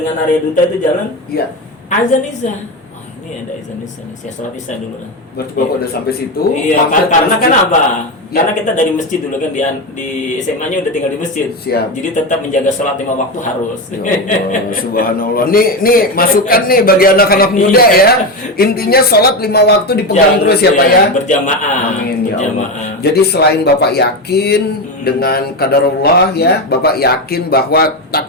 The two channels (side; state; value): both; normal; correlation 0.15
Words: Arya Duta itu jalan. Iya. Azan Isya. Oh, ini ada azan Isya nih. Saya sholat Isya dulu lah. Berarti Bapak udah sampai situ. Iya, mampir ke karena kan masjid. apa? Iya. Karena kita dari masjid dulu kan di SMA-nya udah tinggal di masjid. Siap. Jadi tetap menjaga sholat 5 waktu harus. Ya Allah, subhanallah. Nih masukan nih bagi anak-anak muda ya. Intinya sholat 5 waktu dipegang terus ya Pak ya. Berjamaah. Amin ya Allah. Berjamaah. Jadi selain Bapak yakin dengan qadarullah ya, Bapak yakin bahwa